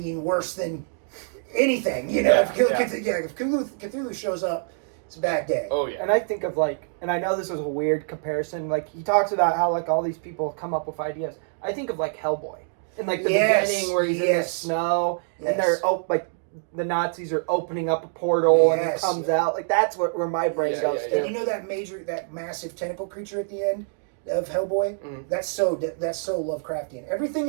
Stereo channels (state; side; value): silent; left; digital silence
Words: worse than anything. You know, if Cthulhu shows up, it's a bad day. Oh yeah. And I think of like, and I know this is a weird comparison. Like he talks about how like all these people come up with ideas. I think of like Hellboy in like the beginning where he's in the snow and they're like the Nazis are opening up a portal and he comes out. Like that's where my brain goes to. And you know that massive tentacle creature at the end of Hellboy? That's so Lovecraftian. Everything